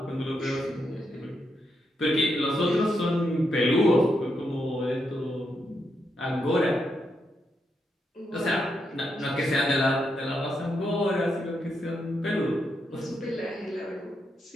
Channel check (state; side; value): normal; both; correlation 0.82